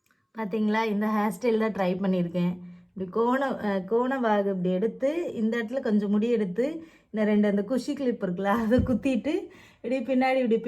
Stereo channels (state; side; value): identical; both; correlation 1.00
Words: பார்த்தீங்களா, இந்த ஹேர் ஸ்டைல் தான் ட்ரை பண்ணியிருக்கேன். இப்படி கோண வாகு இப்படி எடுத்து இந்த இடத்துல கொஞ்சம் முடி எடுத்து இந்த ரெண்டு அந்த குஷி கிளிப் இருக்குல்ல அதை குத்திட்டு இப்படி பின்னாடி இப்படி